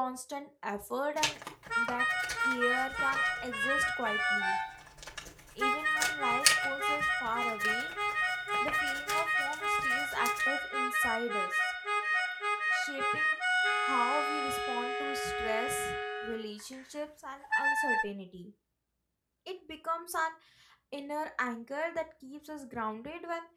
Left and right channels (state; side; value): identical; both; correlation 1.00